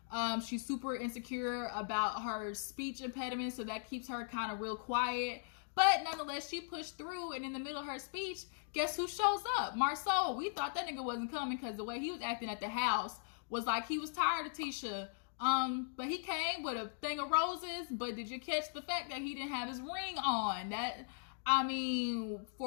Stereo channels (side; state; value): right; silent; digital silence